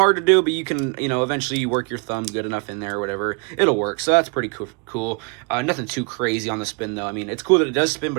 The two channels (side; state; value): left; quieter; 34.5 dB